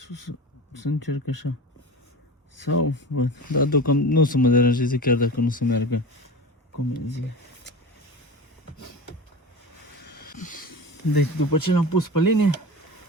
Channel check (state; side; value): normal; both; correlation 0.31